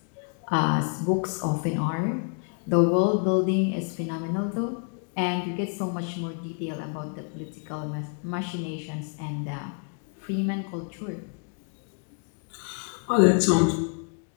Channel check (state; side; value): quieter; right; 39.6 dB